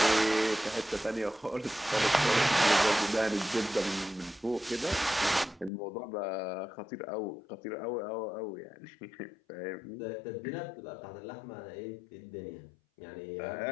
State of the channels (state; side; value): drops out; right; at 5.7 s